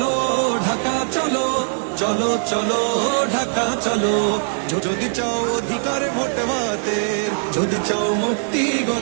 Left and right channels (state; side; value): silent; left; digital silence